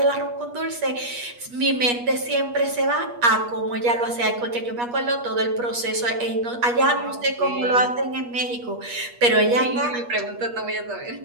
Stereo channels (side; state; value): left; late; 8.4 ms